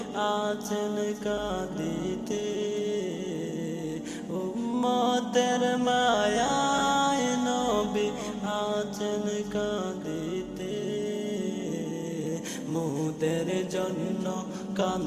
আছেন কাঁদিতে, উম্মতের মায়ায় নবী আছেন কাঁদিতে, মোদের জন্য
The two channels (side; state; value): both; identical; correlation 1.00